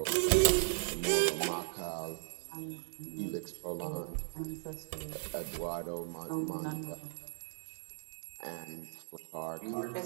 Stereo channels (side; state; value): left; silent; 53 dB below the other